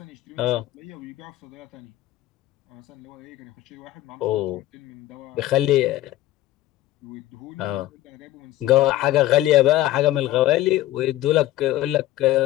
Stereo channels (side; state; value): right; quieter; 15.1 dB